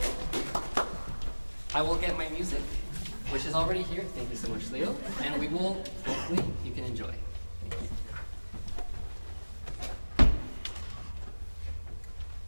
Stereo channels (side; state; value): both; inverted; correlation -1.00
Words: I will get my music which is already here. Thank you so much, Leo. And we will, hopefully, you can enjoy. Thank you.